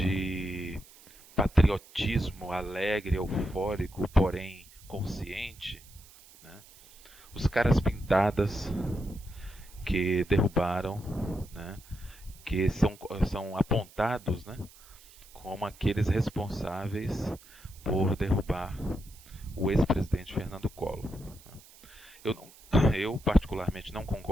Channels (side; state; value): right; noise; hiss, 23 dB below the sound